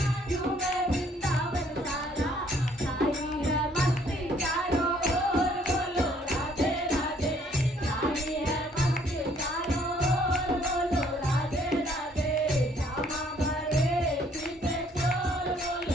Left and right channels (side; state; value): both; normal; correlation 0.63